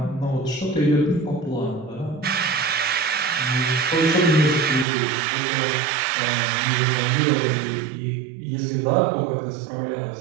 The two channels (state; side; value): drops out; left; at 4.9 s